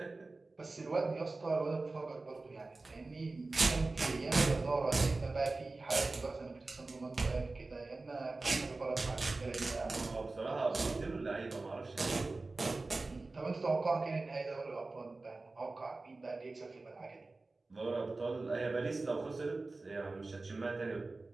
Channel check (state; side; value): quieter; left; 3.4 dB